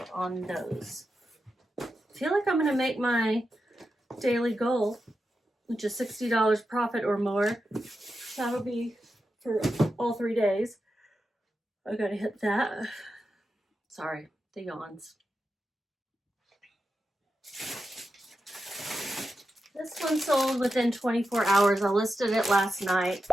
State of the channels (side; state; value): both; normal; correlation 0.89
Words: on those. I feel like I'm gonna make my daily goal, which is $60 profit or more. That'll be for all 3 days. I gotta hit that. Sorry, the yawns. This one sold within 24 hours. I listed it last night.